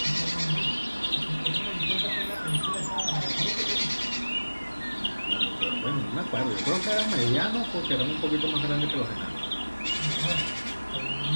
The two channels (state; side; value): inverted; both; correlation -1.00